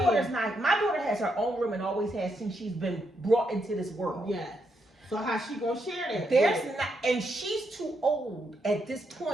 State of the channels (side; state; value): both; normal; correlation 0.80